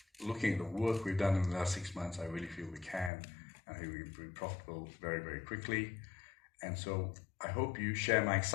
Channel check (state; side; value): drops out; right; at 3.1 s